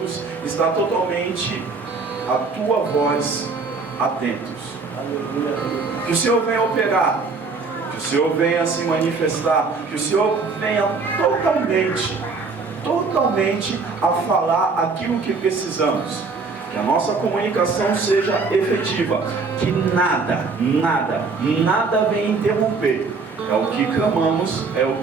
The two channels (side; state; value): left; quieter; 4.4 dB